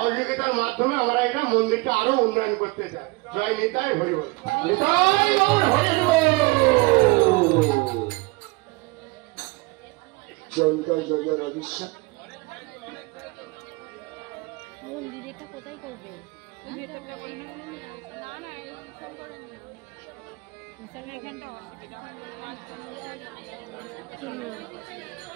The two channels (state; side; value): quieter; left; 24.5 dB